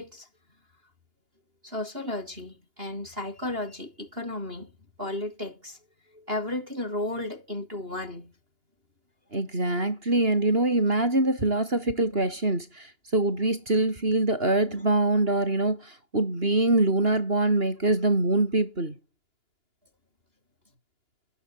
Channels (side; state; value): left; late; 2.9 ms